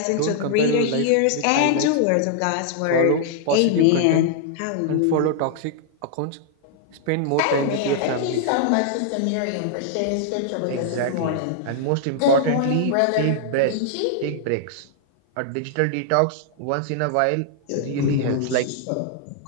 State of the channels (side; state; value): both; different; correlation -0.01